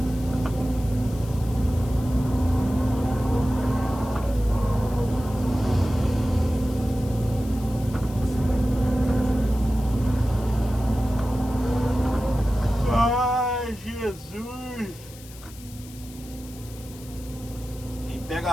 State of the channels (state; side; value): noise; left; hiss, 19 dB below the sound